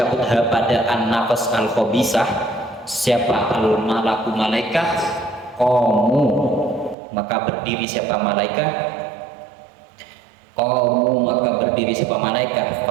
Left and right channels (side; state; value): left; drops out; at 7.0 s